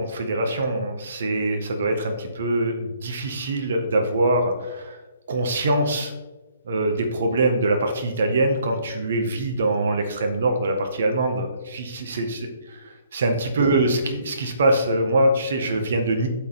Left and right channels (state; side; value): inverted; both; correlation -0.66